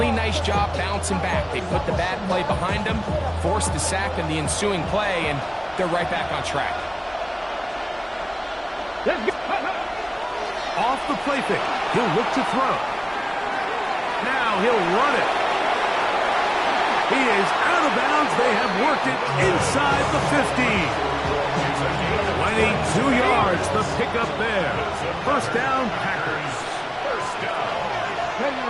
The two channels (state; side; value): identical; both; correlation 1.00